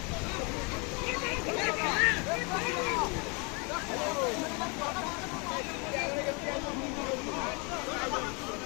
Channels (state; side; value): quieter; right; 31.9 dB